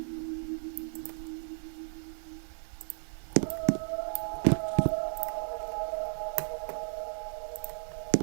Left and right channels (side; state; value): left; silent; 55 dB below the other